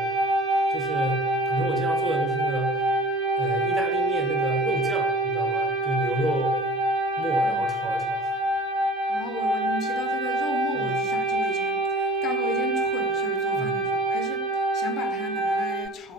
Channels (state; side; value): normal; both; correlation 0.43